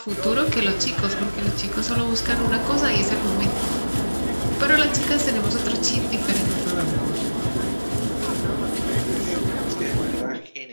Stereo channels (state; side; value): inverted; both; correlation -1.00